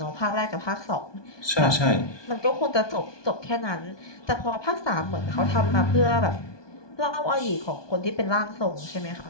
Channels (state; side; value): late; right; 1.2 ms